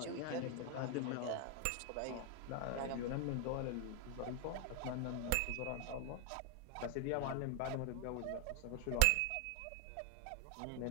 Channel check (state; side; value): different; both; correlation 0.00